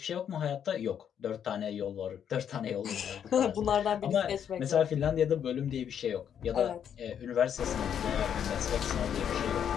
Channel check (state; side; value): quieter; right; 8.7 dB